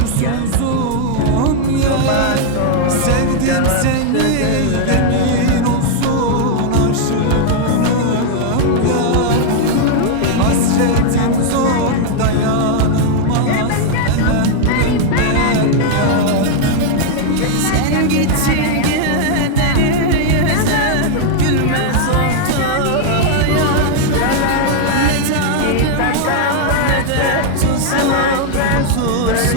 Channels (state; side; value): different; both; correlation 0.00